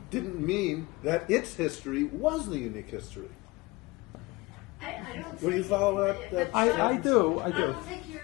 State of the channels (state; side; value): quieter; right; 23.0 dB